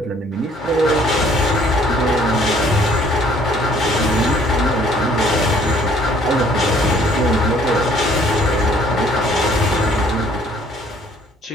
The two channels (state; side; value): normal; both; correlation 0.59